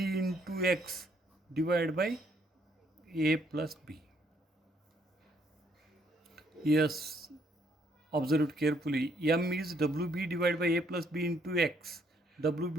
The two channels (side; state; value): both; normal; correlation 0.69